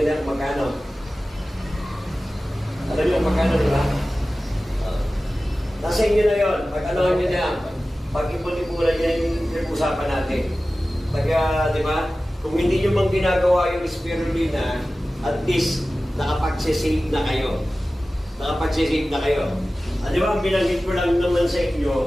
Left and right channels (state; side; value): normal; both; correlation 0.96